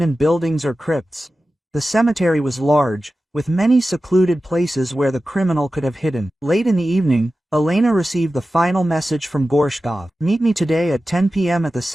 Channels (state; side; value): normal; both; correlation 0.94